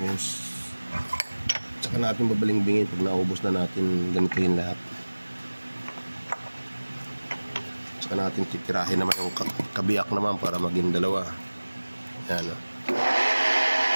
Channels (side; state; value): both; inverted; correlation -1.00